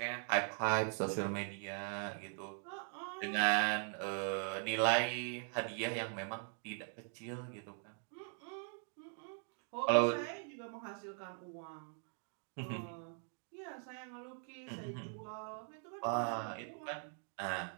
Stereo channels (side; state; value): left; silent; 50 dB below the other